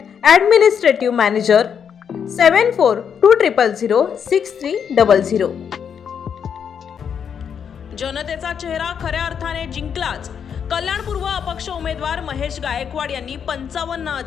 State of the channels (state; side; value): quieter; right; 7.5 dB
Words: ॲडमिनिस्ट्रेटिव्ह मॅनेजर 7420006300। जनतेचा चेहरा खऱ्या अर्थाने जिंकलाच। कल्याण पूर्व अपक्ष उमेदवार महेश गायकवाड यांनी